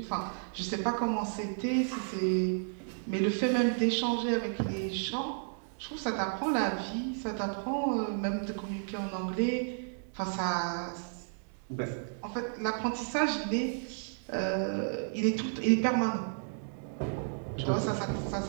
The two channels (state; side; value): silent; left; digital silence